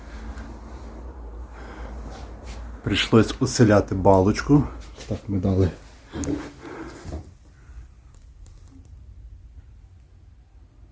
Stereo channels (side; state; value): both; identical; correlation 1.00